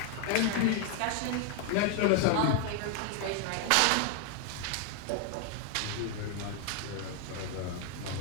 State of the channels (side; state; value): both; different; correlation 0.00